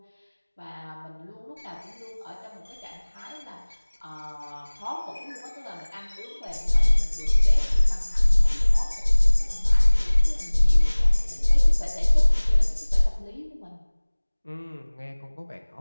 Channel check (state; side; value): inverted; both; correlation -1.00